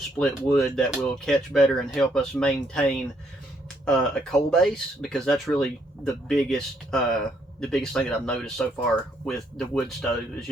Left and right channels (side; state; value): both; normal; correlation 0.72